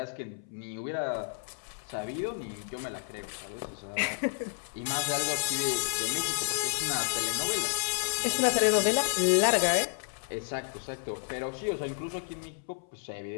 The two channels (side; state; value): right; silent; 57 dB below the other